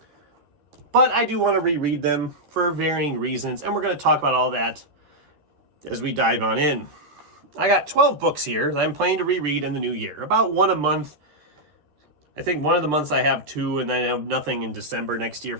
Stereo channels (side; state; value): left; late; 13 ms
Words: but I do want to reread them for varying reasons, and we're going to talk about all that as we dive on in. I got 12 books here that I'm planning to reread in the new year, about one a month. I think one of the months I have two, and then I have nothing in December next year